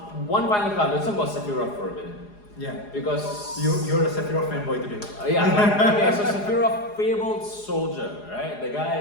final card. Let's talk about Sephiroth for a minute. Yeah, Because you're a Sephiroth fanboy today. okay, so Sephiroth, Fabled Soldier, right? The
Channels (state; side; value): late; right; 4.8 ms